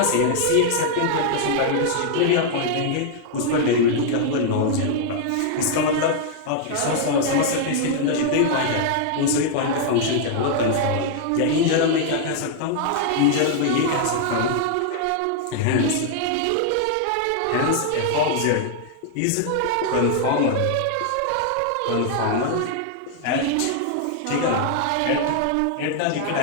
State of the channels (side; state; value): both; different; correlation 0.00